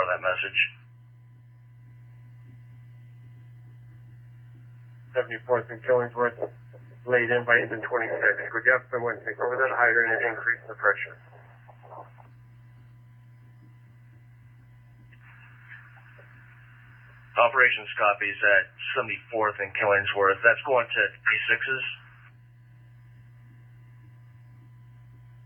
of that message. 74th and Killingsworth, laid in by engine 26. Could you have someone take over that hydrant and increase the pressure? Operations copies at 74th and Killingsworth. That's going to P6s.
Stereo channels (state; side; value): identical; both; correlation 1.00